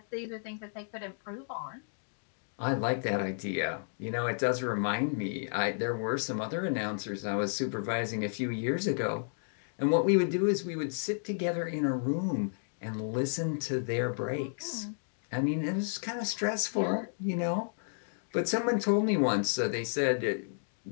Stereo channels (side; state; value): right; silent; digital silence